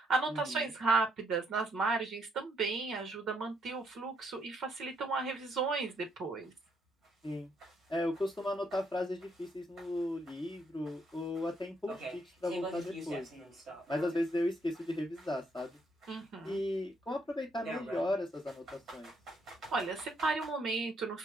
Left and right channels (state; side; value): normal; both; correlation 0.72